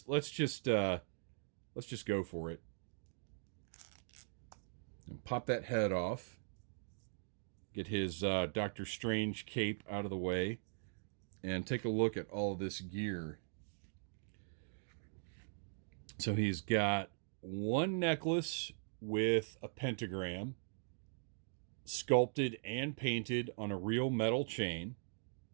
just go for it. And pop that head off. Get his Doctor Strange cape out of the way. And take a look at all this gear. So he's got one necklace with a pentagram, sculpted and painted on a real metal chain.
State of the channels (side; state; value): left; silent; digital silence